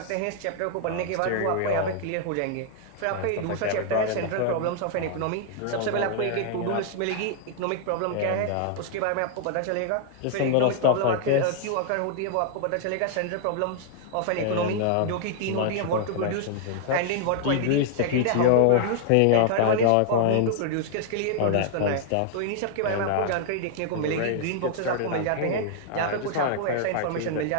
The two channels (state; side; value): different; both; correlation -0.01